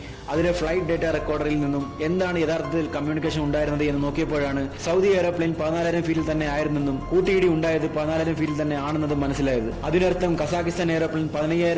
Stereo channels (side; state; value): both; identical; correlation 1.00